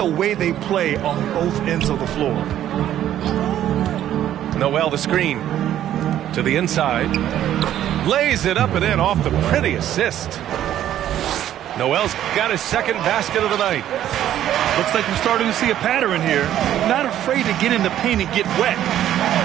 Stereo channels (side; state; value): left; quieter; 11.6 dB